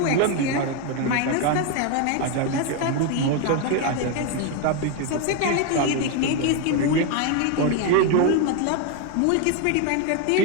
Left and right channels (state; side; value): different; both; correlation 0.02